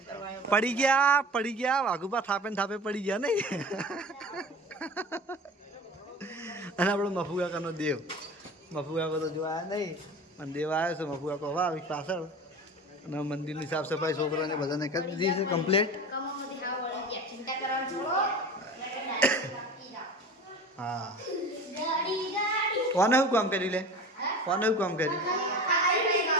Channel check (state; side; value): normal; both; correlation 0.35